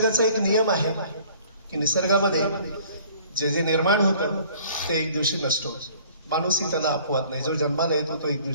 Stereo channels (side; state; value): both; inverted; correlation -0.53